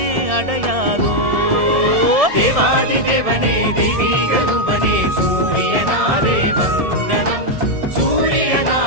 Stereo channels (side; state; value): left; late; 1.7 ms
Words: அடையாதோ தேவாதி தேவனே தெய்வீக ரூபனே சூரியனாரே வந்தனம்